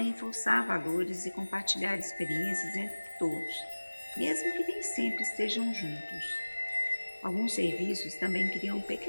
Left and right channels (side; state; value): both; inverted; correlation -1.00